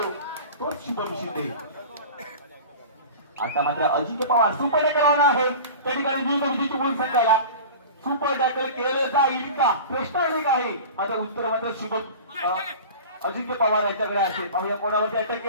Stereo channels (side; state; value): both; inverted; correlation -0.36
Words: तोच शुभम शिंदे. आता मात्र अजिंक्य पवार सुपर करणार आहे त्या ठिकाणी नियुक्त विजय चिपळूण संघाला. सुपर टॅकल केलं जाईल का प्रश्न अनेक आहे. माझं उत्तर मात्र शुभम अजिंक्य पवार याच्याकडे असेल. पाहूया कोणावरती अटॅक